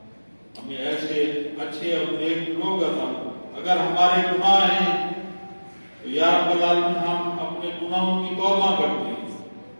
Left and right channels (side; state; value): both; inverted; correlation -1.00